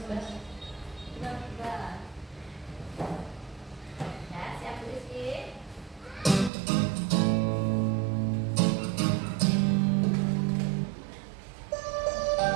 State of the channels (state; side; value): drops out; left; at 6.5 s